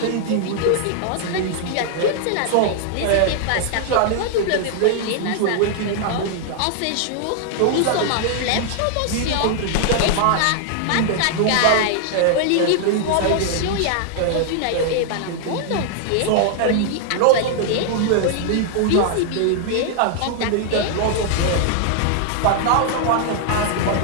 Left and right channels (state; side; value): different; both; correlation 0.00